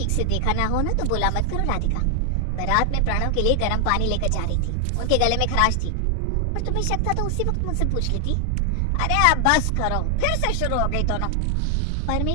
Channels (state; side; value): different; both; correlation 0.00